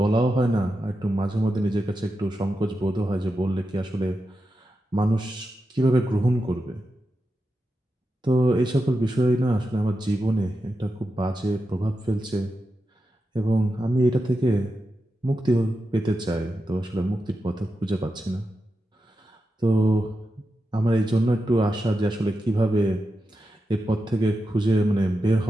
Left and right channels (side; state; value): both; normal; correlation 0.89